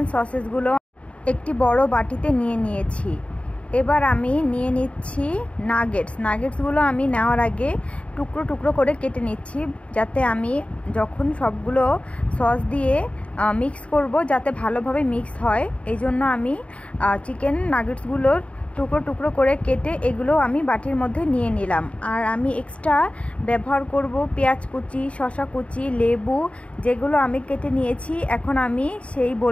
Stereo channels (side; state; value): right; late; 0.063 ms